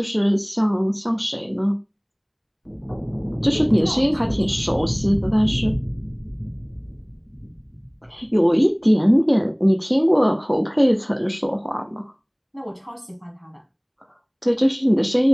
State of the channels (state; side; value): identical; both; correlation 1.00